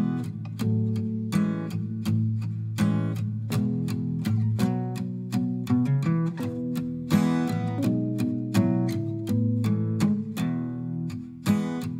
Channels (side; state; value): both; identical; correlation 1.00